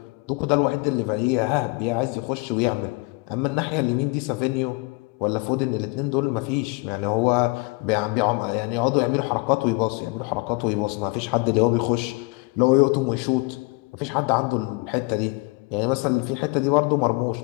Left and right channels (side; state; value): right; quieter; 27.1 dB